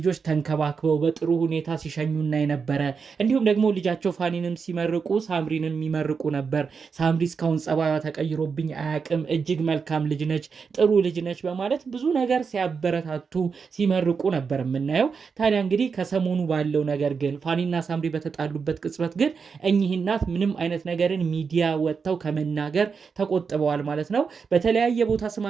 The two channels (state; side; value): quieter; left; 5.6 dB